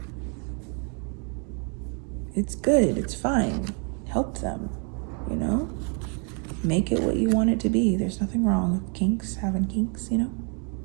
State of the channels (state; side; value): quieter; left; 38.2 dB